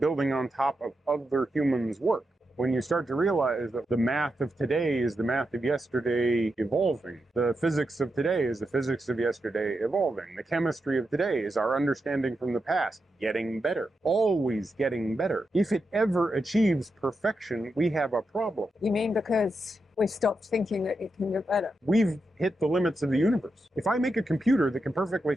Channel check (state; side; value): normal; both; correlation 0.87